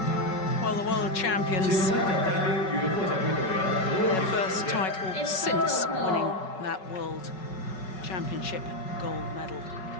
Well, the world champions, their first title since winning that world championship gold medal.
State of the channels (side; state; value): right; late; 5.4 ms